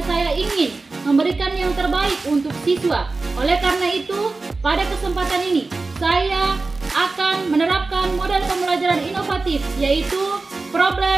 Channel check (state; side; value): quieter; left; 3.7 dB